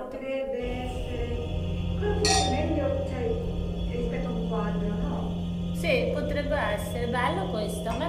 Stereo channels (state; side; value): identical; both; correlation 1.00